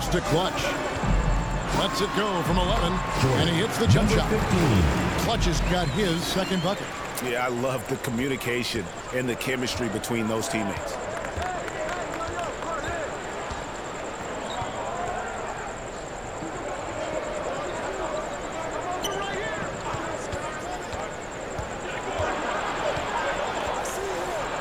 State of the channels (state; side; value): identical; both; correlation 1.00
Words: to Clutch. Lets it go from 11, and he hits the jump shot. Clutch has got his second bucket. Yeah, I love the communication and the chemistry between those teammates.